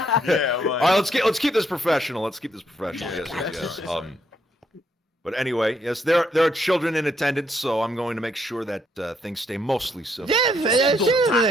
All right, let's keep this professional. Yes. But anyway, yes, there are children in attendance, so I'm going to make sure that things stay mostly civil. Yes,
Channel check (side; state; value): both; normal; correlation 0.73